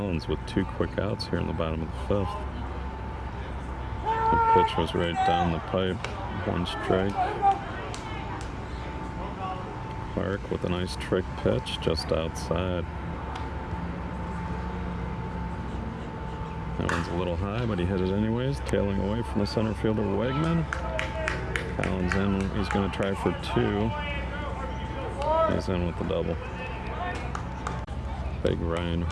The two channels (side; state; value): both; identical; correlation 1.00